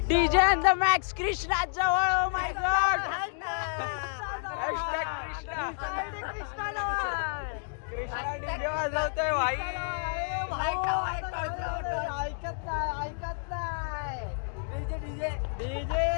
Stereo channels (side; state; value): right; silent; digital silence